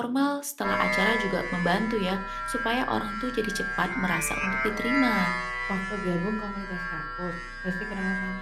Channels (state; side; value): identical; both; correlation 1.00